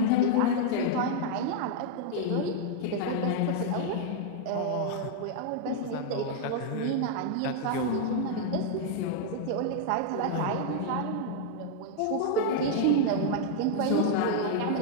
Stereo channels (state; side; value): different; both; correlation 0.00